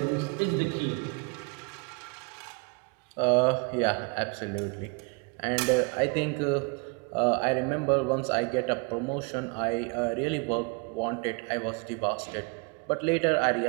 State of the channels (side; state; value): left; quieter; 31.3 dB